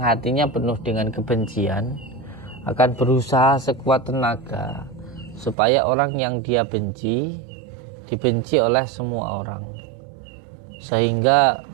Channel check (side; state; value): left; drops out; at 5.6 s